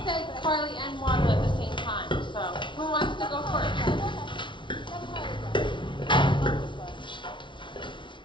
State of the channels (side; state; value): right; late; 0.24 ms